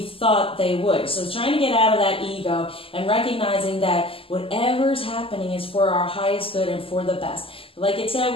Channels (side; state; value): right; late; 0.26 ms